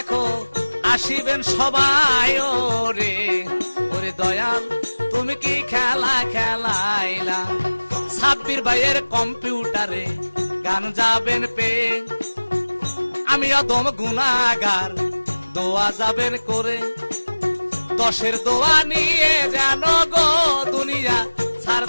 আসিবেন সবাই। ওরে ওরে দয়াল, তুমি কি খেলা খেলাইলা? সাব্বির ভাইয়ের কম্পিউটারে গান যাবেন পে। আমি অদম গুনাহগার, দোয়া যাবেন করে, 10-এর দোয়া নিয়ে যেন গো দুনিয়া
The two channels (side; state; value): both; inverted; correlation -1.00